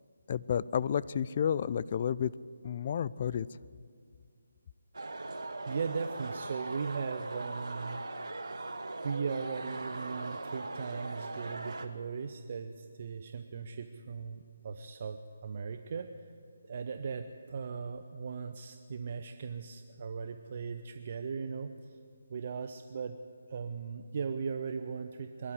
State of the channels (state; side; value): inverted; both; correlation -0.74